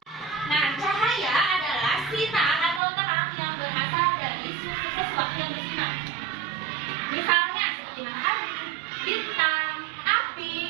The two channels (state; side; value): drops out; left; at 2.8 s